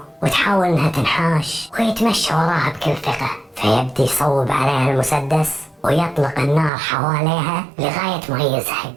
وتحاول انها تنحاش، ويتمشى وراها بكل ثقة. فيبدي يصوب عليها المسدس ويطلق النار حواليها لغاية ما يزهق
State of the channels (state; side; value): drops out; left; at 6.7 s